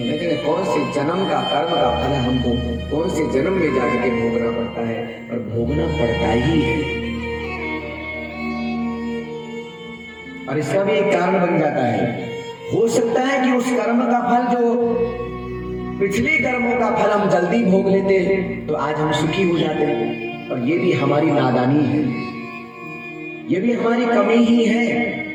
लेकिन कौन से जन्म का कर्म का फल हमको कौन से जन्म में जाकर के भोगना पड़ता है, और भोगना पड़ता ही है। और इसका भी एक कारण बन जाता है। हो सकता है कि उस कर्म का फल जो पिछले कर्मों का फल हम जल्दी भोग लेते तो आज हम सुखी हो जाते, और ये भी हमारी नादानी है, ये भी हमारी कमी ही है,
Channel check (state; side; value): identical; both; correlation 1.00